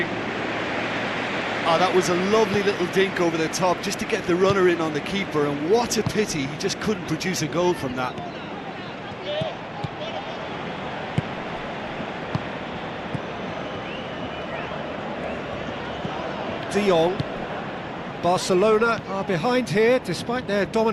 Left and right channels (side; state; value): both; identical; correlation 1.00